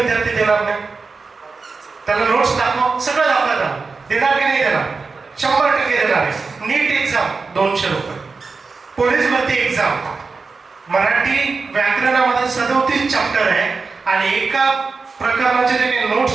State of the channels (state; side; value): quieter; left; 4.4 dB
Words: देणार नाही? त्याला नोट्स दाखव, सगळं दाखवतात, देणार की नाही देणार? 100% देणार आहे. नीट एक्झाम 200 रुपये. पोलीस भरती एक्झाम मराठी व्याकरणामध्ये 37 चॅप्टर आहे आणि एका प्रकरणाचे जे काही